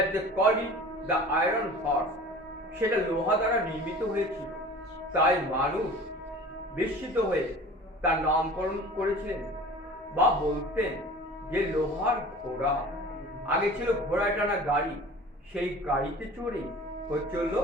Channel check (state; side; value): normal; both; correlation 0.41